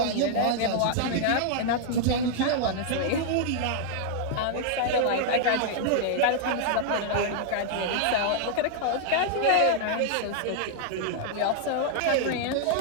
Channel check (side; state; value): both; different; correlation 0.00